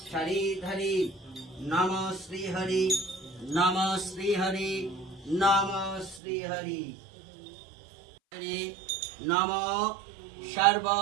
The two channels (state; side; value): drops out; left; at 6.2 s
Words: শরীধরে নম শ্রীহরি নম শ্রীহরি নম শ্রীহরি नम सर्व